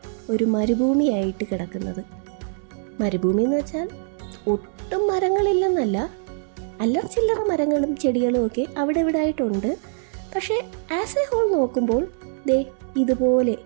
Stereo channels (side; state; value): left; silent; digital silence